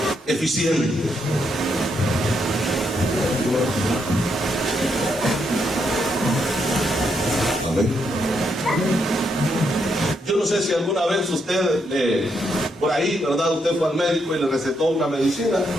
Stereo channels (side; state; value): both; normal; correlation 0.78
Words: eficiente. Amén. Yo no sé si alguna vez usted, por ahí, ¿verdad? Usted fue al médico y le recetó una medicina.